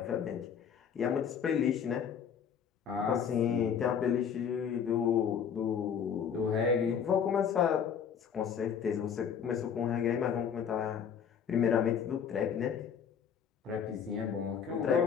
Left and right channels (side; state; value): right; quieter; 7.6 dB